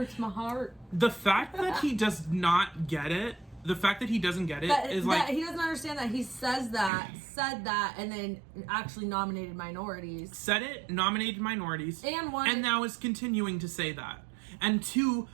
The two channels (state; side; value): drops out; left; at 6.9 s